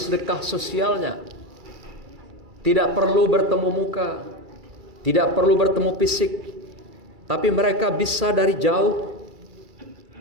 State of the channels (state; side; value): late; left; 2.3 ms